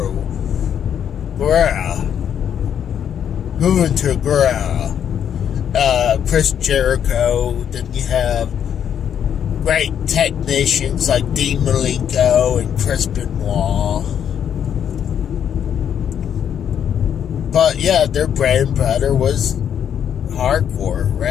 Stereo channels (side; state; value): right; quieter; 8.8 dB